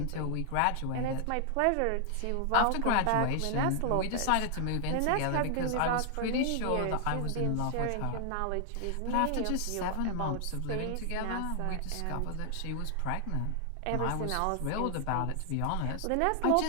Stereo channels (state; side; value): different; both; correlation 0.00